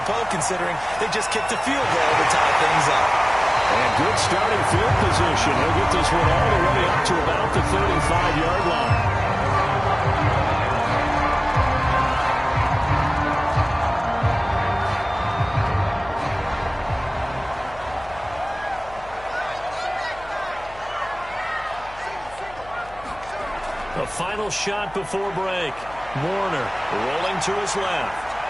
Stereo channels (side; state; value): left; noise; hum, 20 dB below the sound